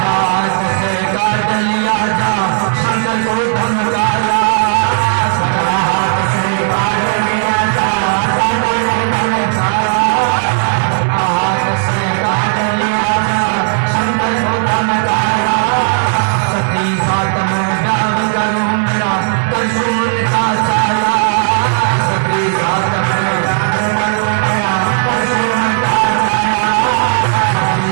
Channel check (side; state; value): left; silent; digital silence